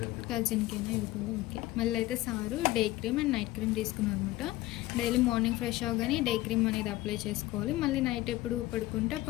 కజిన్కేనా ఇవి కూడా? ఓకే. మళ్ళీ అయితే sir day cream and night cream తీసుకున్నారు అనమాట. డైలీ మార్నింగ్ ఫ్రెష్ అవగానే డే క్రీమ్ అనేది అప్లై చేసుకోవాలి. మళ్ళీ నైట్ ఎప్పుడు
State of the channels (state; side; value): quieter; right; 17.4 dB